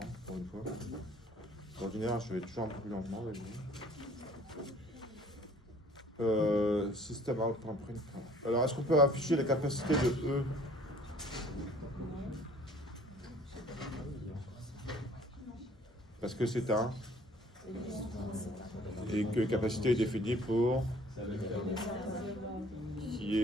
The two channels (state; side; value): normal; both; correlation 0.55